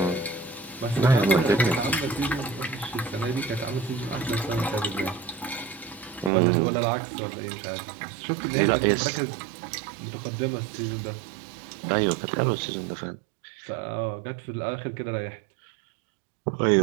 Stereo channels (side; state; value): left; drops out; at 6.3 s